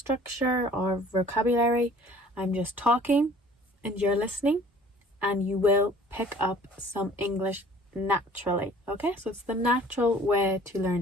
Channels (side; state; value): both; normal; correlation 0.51